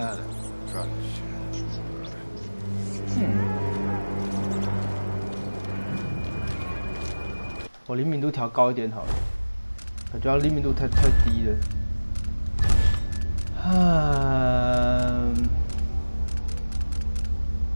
我灵敏度调高一点好了，感觉灵敏度太低了。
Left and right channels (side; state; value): both; inverted; correlation -1.00